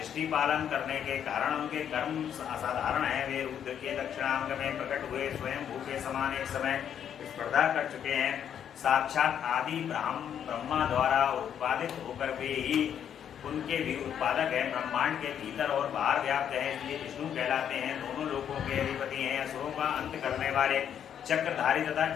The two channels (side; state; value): right; quieter; 9.0 dB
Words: पालन करने के कारण उनके कर्म असाधारण है। वे रुद्र के दक्षिणांग में प्रकट हुए स्वयं भू के समान एक समय स्पर्धा कर चुके हैं। साक्षात आदि ब्रह्मा द्वारा उत्पादित होकर वे ही उनके भी उत्पादक हैं। ब्रह्मांड के भीतर और बाहर व्याप्त है, इसलिए विष्णु कहलाते हैं। दोनों लोकों के अधिपति हैं। असुरों का अंत करने वाले चक्रधारी तथा